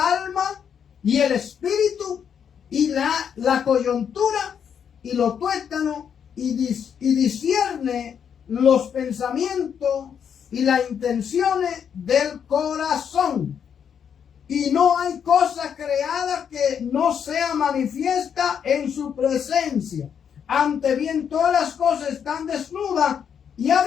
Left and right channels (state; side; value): quieter; right; 7.8 dB